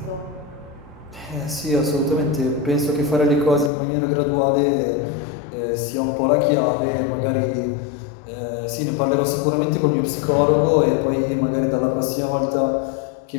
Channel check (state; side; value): drops out; right; at 3.7 s